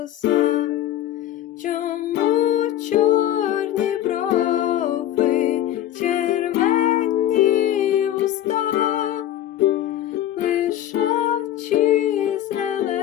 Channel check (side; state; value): right; quieter; 12.2 dB